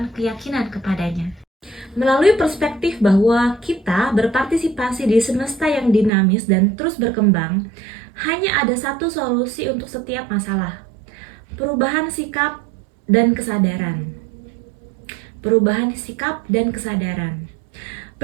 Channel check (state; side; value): drops out; left; at 6.1 s